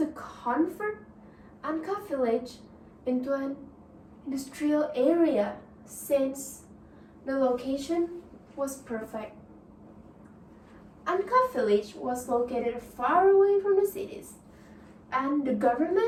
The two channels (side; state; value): both; identical; correlation 1.00